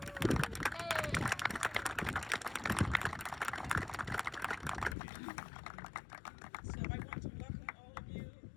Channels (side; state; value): right; drops out; at 5.0 s